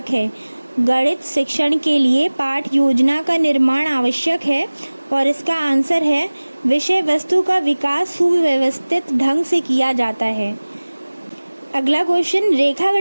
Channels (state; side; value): inverted; both; correlation -1.00